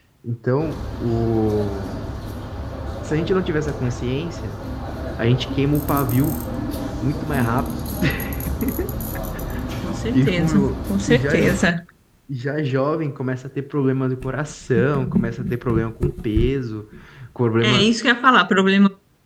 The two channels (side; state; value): both; identical; correlation 1.00